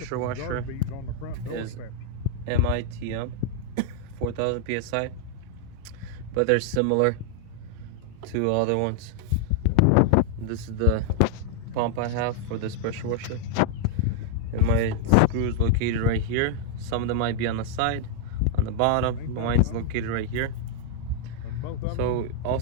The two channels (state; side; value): different; both; correlation -0.01